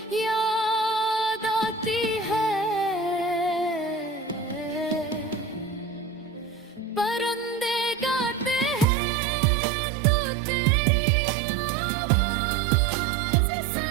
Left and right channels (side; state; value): left; drops out; at 8.8 s